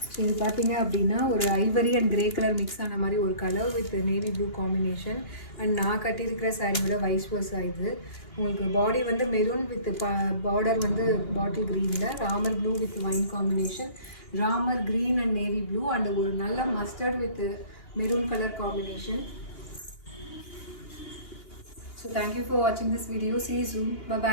இது பார்த்தீங்க அப்படின்னா ஒரு Ivory and grey colour mix ஆன மாதிரி ஒரு colour with navy blue combination. And நான் கட்டியிருக்கிற சாரியோட வைஸ் வர்ஸா இது. உங்களுக்கு பாடி வந்து மெரூன் வித் பார்டர் வந்து பாட்டில் க்ரீனில், Ramar blue with wine combination, Ramar green and navy blue and ஒரு நல்ல mustard with maroon colour combination. So thank you for வாட்சிங் this video. See you soon. Bye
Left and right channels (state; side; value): late; right; 3.1 ms